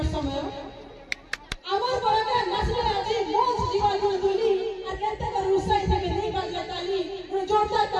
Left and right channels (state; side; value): identical; both; correlation 1.00